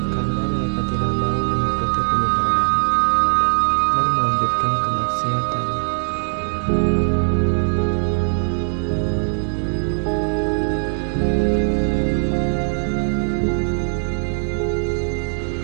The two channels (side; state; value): left; silent; digital silence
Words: karena mereka tidak mau mengikuti kebenaran dan melanjutkan kemaksiatan.